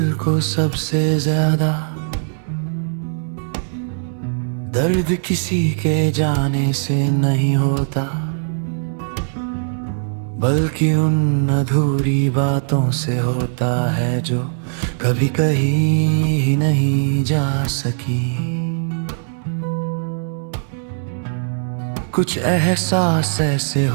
को सबसे ज्यादा दर्द किसी के जाने से नहीं होता, बल्कि उन अधूरी बातों से होता है जो कभी कहीं ही नहीं जा सकी। कुछ एहसास ऐसे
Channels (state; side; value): silent; left; digital silence